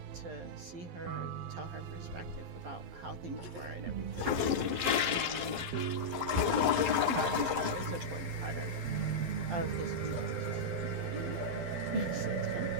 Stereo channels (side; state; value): left; late; 12 ms